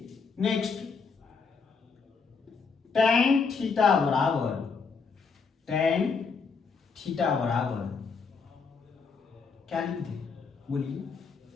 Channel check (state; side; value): quieter; right; 5.1 dB